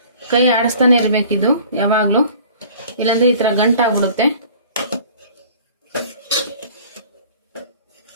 ಕೈ ಆಡಿಸ್ತಾನೆ ಇರಬೇಕಿದು ಯಾವಾಗಲೂ, ಇಲ್ಲಾಂದರೆ ಈ ಥರ ಗಂಟಾಗ್ಬಿಡುತ್ತೆ.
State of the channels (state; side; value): inverted; both; correlation -0.49